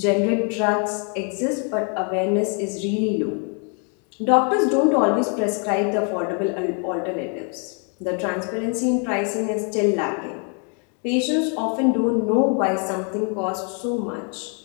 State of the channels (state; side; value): quieter; right; 40.0 dB